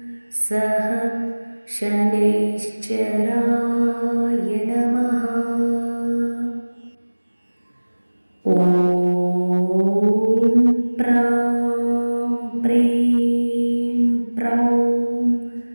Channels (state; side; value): inverted; both; correlation -1.00